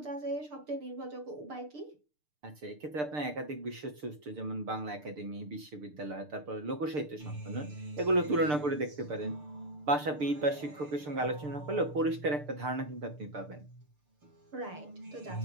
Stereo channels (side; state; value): left; late; 6.7 ms